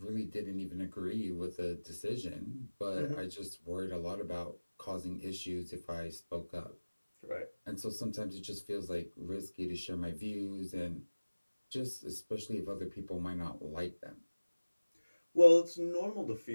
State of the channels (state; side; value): inverted; both; correlation -1.00